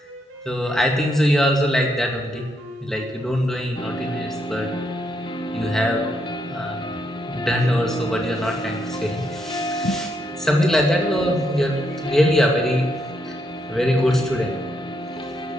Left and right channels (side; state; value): both; normal; correlation 0.78